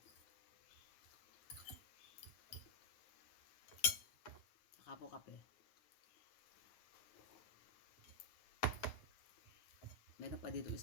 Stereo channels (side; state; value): right; late; 9.4 ms